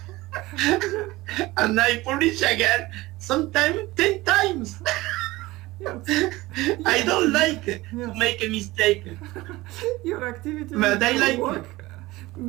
I publish again, sometimes 10 times. Yes. I don't like to Yes. make a mistake. Your activity But I will like work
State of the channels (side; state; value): left; quieter; 19.4 dB